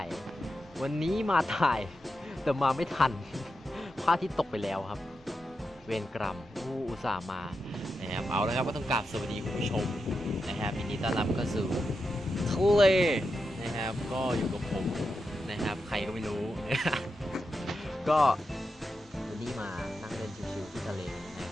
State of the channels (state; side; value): normal; both; correlation 0.88